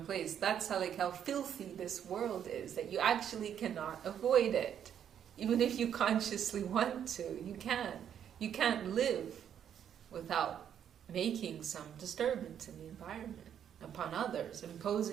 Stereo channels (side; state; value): left; quieter; 9.1 dB